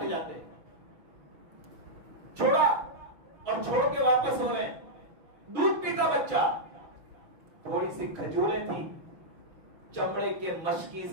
جاتے. چھوڑا اور چھوڑ کے واپس ہو رہے ہیں. دودھ پیتا بچہ. تھوڑی سی کھجوریں تھی، چمڑے کے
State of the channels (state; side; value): late; left; 6.1 ms